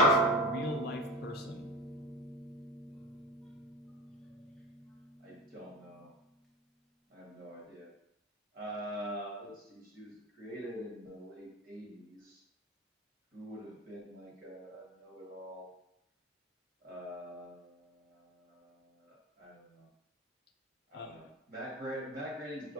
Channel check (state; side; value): normal; both; correlation 0.28